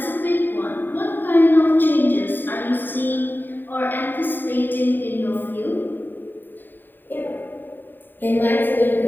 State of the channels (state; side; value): late; right; 0.092 ms